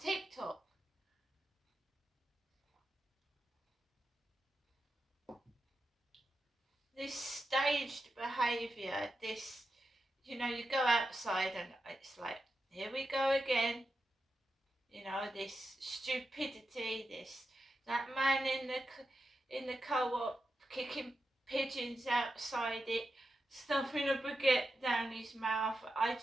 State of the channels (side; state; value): both; normal; correlation 0.89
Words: This staged behaviour, this, you go outside and it's like, here we go again. This stupidity, that man in the co-op kicking pigeons outside it, stuffing a baguette down his mouth. I